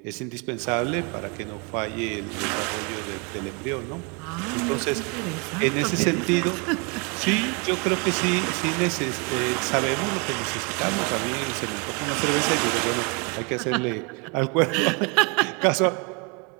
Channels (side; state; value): left; quieter; 31.8 dB